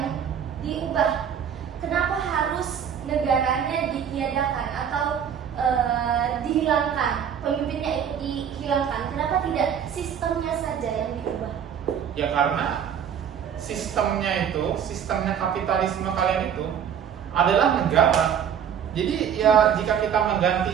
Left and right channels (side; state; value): left; quieter; 8.4 dB